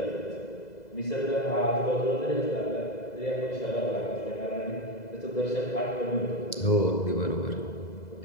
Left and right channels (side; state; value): right; late; 2.0 ms